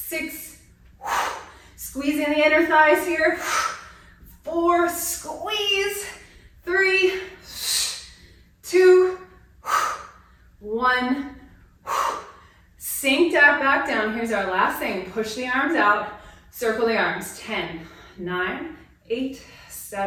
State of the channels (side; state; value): both; identical; correlation 1.00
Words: squeeze in the inner thighs here. 4, squeeze. 3, 2, 1. Sink that back down. Here's our last thing. Push the arms out. Circle the arms. 10, 9, 8,